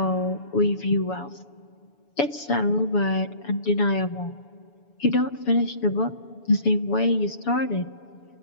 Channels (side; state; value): right; late; 7.0 ms